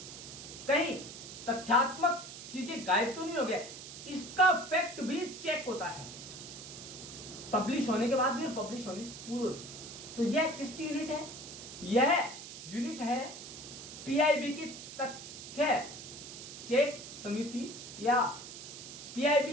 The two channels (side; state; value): right; noise; hiss, 12 dB below the sound